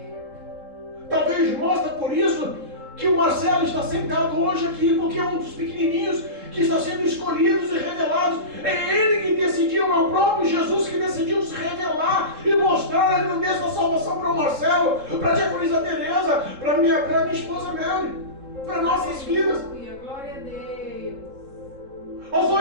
Talvez mostra por isso que o Marcelo está sentado hoje aqui, porque é um dos pequenininhos que está sendo escolhidos e revelados. É ele que decidiu, é o próprio Jesus que decidiu se revelar e mostrar a grandeza da salvação para o Marcelo, para a diaconisa Teresa, para a minha esposa Mary, para nossas vidas. Glória a Deus. Aos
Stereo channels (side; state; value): left; late; 3.7 ms